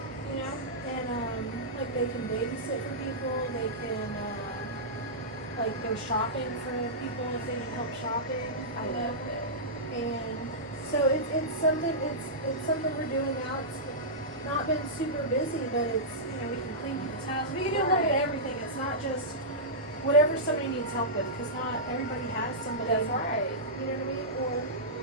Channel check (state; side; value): normal; both; correlation -0.14